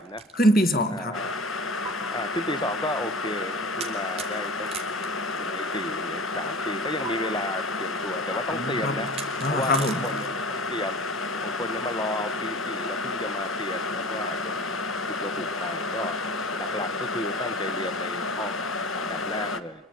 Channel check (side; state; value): both; normal; correlation 0.38